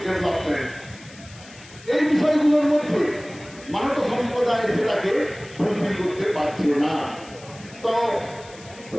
development. এই বিষয়গুলোর মধ্যে মানব সম্প্রদায় সেটাকে fulfil করতে পারছে না। তো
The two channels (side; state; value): left; noise; hiss, 21 dB below the sound